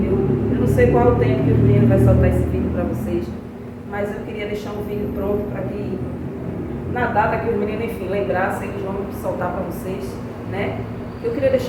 eu não sei qual o tempo que o menino vai soltar esse vídeo para vocês, mas eu queria deixar um vídeo pronto para que, na data que os meninos, enfim, lembrassem, eles vão soltar para vocês, né? Eu queria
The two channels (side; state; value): both; identical; correlation 1.00